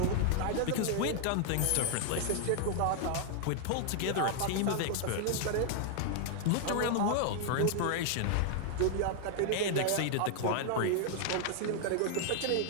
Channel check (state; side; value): different; both; correlation 0.00